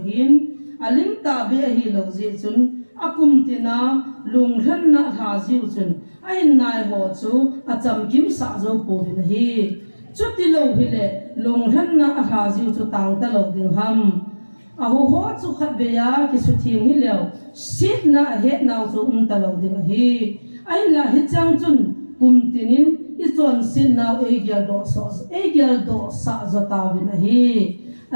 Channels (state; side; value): inverted; both; correlation -1.00